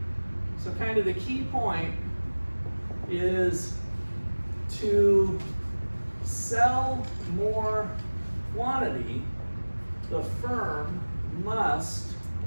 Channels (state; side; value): inverted; both; correlation -1.00